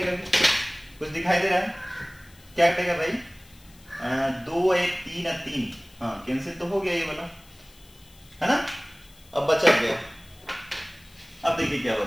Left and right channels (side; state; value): left; noise; hiss, 26 dB below the sound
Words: कुछ दिखाई दे रहा है, क्या कटेगा भाई, 2 1 3 3, हाँ कैंसिल तो हो गया ये वाला, है ना। अब बचा गया, अब देखिए क्या